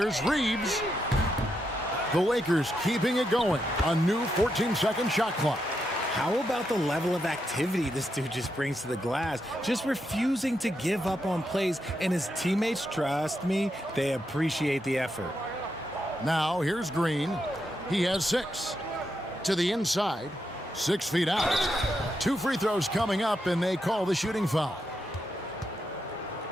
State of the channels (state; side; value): normal; both; correlation 0.83